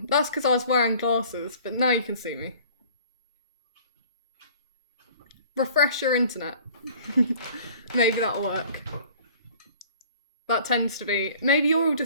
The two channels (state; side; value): inverted; both; correlation -0.49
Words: That's because I was wearing glasses, but now you can see me. Refresh your internet. Maybe that'll work. That tends to be... Maybe you're all